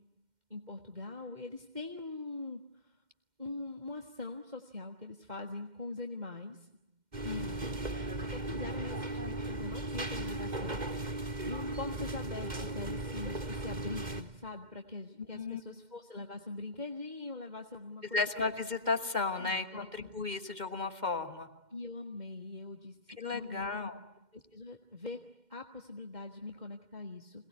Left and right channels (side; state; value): left; late; 2.1 ms